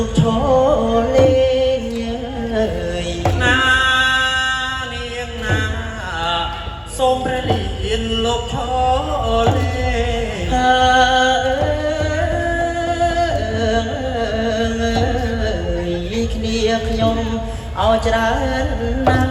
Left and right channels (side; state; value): both; identical; correlation 1.00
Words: កឈរលេងអើយណានាងណាសូមព្រះលានលោកឈរលេងគ្នាខ្ញុំអោច្រើនណាំ